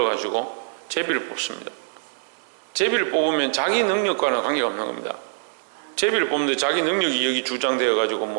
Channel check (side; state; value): left; silent; digital silence